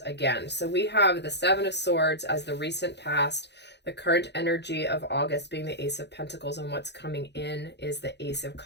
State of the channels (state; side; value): late; right; 0.50 ms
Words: again. So we have the 7 of Swords as the recent past, the current energy of August being the Ace of Pentacles, and what's coming in is the Ace of